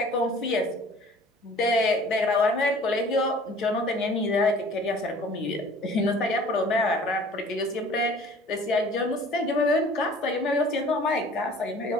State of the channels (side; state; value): both; normal; correlation 0.49